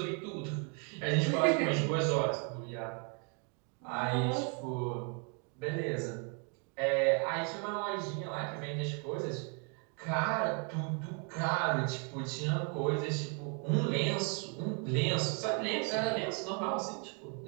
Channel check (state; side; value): quieter; left; 38.0 dB